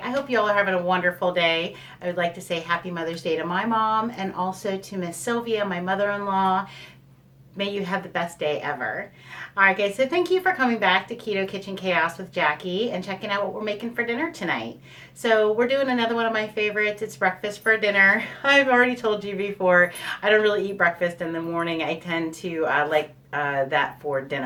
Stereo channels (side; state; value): both; identical; correlation 1.00